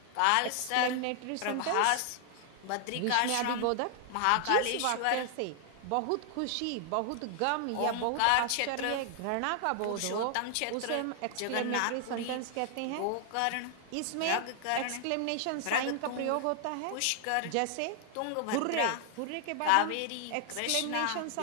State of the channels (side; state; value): both; different; correlation 0.00